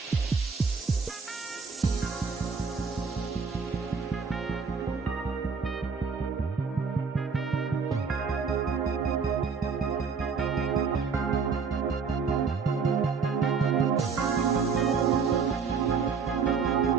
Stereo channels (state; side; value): quieter; left; 5.4 dB